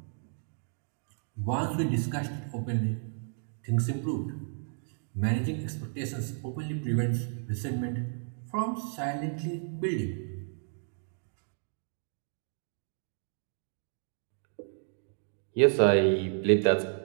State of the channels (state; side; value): silent; left; digital silence